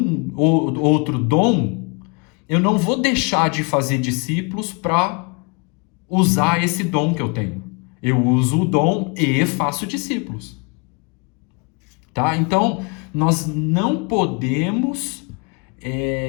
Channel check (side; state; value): right; quieter; 32.4 dB